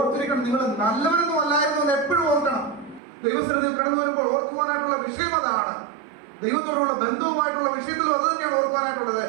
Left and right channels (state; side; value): drops out; left; at 3.0 s